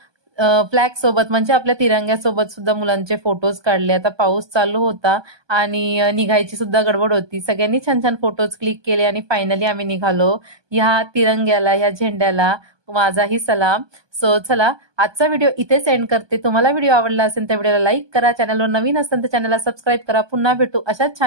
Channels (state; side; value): late; left; 1.2 ms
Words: फ्लॅग सोबत म्हणजे आपल्या तिरंग्यासोबत सुद्धा मुलांचे फोटोज काढले. आता पाऊस चालू होता आणि निघायची सुद्धा गडबड होती. सगळ्यांनी छान छान फोटोज क्लिक केले आणि फायनली आम्ही निघालो. ह्या तिरंग्याला, ह्या झेंड्याला माझाही सलाम. सो चला, आजचा व्हिडिओ इथेच एंड करते. तुम्हाला व्हिडिओ आवडला असेल तर व्हिडिओला लाईक करा. चॅनलवर नवीन असेल तर चॅनलला सबस्क्राईब करा. पुन्हा भेटू अशाच